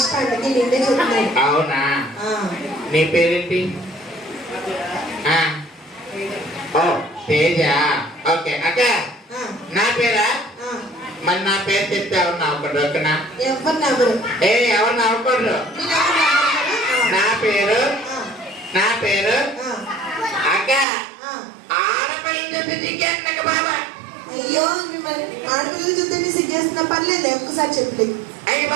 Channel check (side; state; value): left; drops out; at 20.9 s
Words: అందుకే నిన్నే చెప్తున్నాను. అవునా? నీ పేరేంటి? ఓ తేజ. ఓకే అక్క. నా పేరా? మరి నా పేరు చెప్తే ఎవరు నవ్వకూడదు ఓకేనా? ఎవరు నవ్వరు. ఎవరు నవ్వకూడదు. నా పేరు అక్క. ఆడపిల్లలు చెప్పి సిగ్గేస్తున్నా బాబా. అయ్యో మిమ్మల్ని ఆడపిల్లలు చూస్తే సిగ్గేస్తున్నా. పర్లేదు ఒక్కసారి చెప్పలేదు. అయ్యి